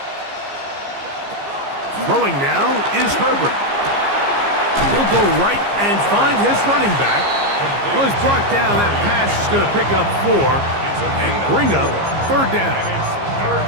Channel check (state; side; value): late; left; 15 ms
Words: Throwing now is Herbert. He'll go right and find his running back. Well, he's brought down. That pass is going to pick up 4 and bring up third down.